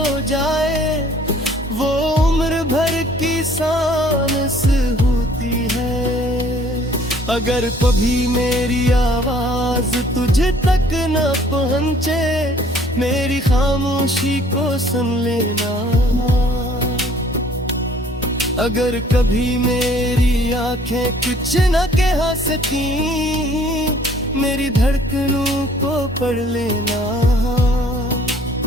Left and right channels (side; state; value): both; normal; correlation 0.57